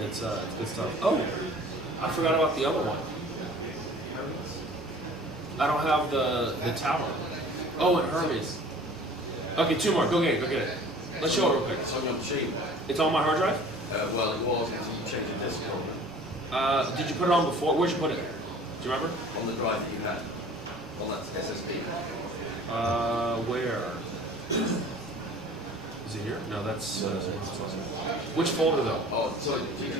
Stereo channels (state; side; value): normal; both; correlation 0.47